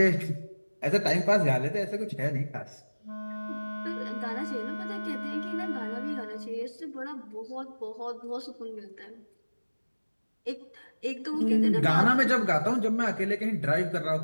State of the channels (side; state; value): both; inverted; correlation -1.00